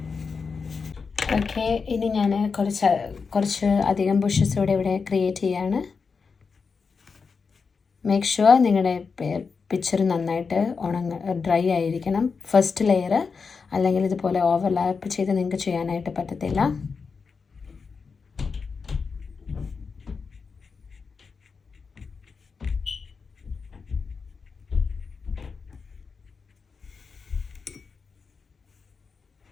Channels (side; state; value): right; quieter; 5.2 dB